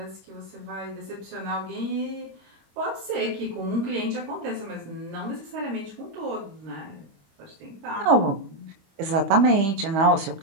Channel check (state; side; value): late; left; 25 ms